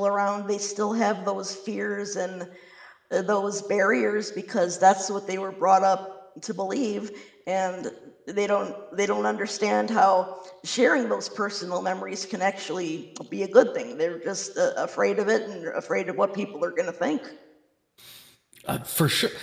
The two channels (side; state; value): both; identical; correlation 1.00